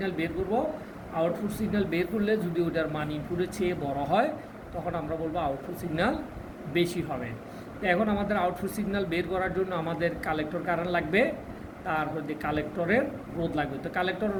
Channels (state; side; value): identical; both; correlation 1.00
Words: বের করব। আউটপুট সিগন্যাল বের করলে যদি ওটার মান ইনপুটের চেয়ে বড় হয় তখন আমরা বলবো আউটপুট সিগন্যাল বেশি হবে। তো এখন আমাদের আউটপুট সিগন্যাল বের করার জন্য আমাদের কালেক্টর কারেন্ট লাগবে, তারপর কালেক্টরের রোধ লাগবে। তো কালেক্টরের